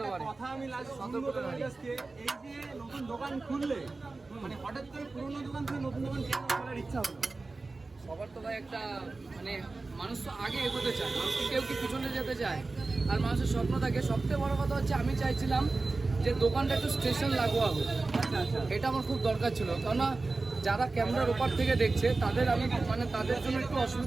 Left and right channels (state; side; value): quieter; left; 3.6 dB